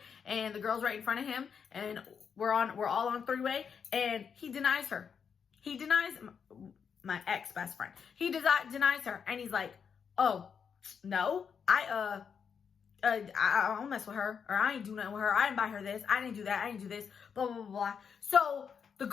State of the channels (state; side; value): quieter; right; 6.8 dB